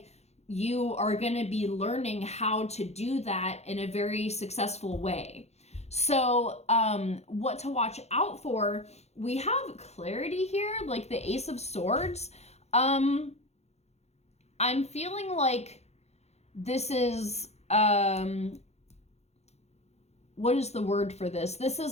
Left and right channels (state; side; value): late; right; 0.31 ms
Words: you are going to be learning how to do that in a very successful way. So what to watch out for, we have clarity here, like the Ace of Swords. I'm feeling like this is, what is the word for this? This